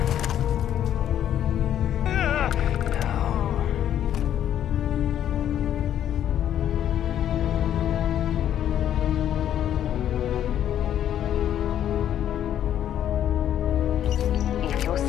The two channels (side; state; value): right; quieter; 10.6 dB